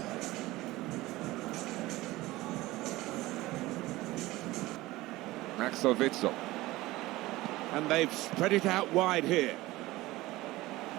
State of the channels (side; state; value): left; quieter; 18.6 dB